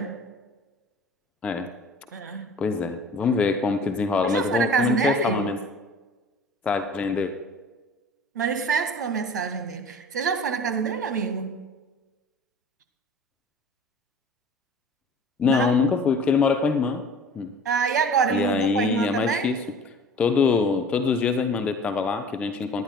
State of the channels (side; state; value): both; normal; correlation 0.44